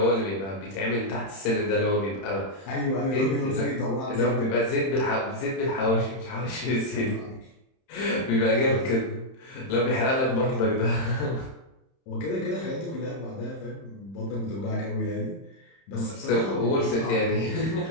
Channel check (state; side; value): late; right; 31 ms